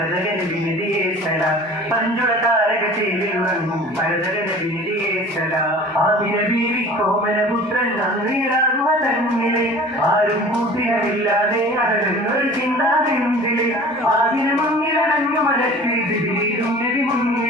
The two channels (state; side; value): normal; both; correlation 0.43